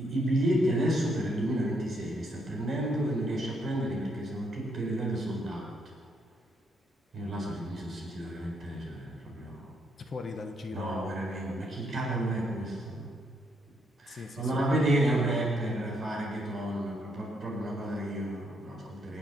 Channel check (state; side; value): normal; both; correlation 0.74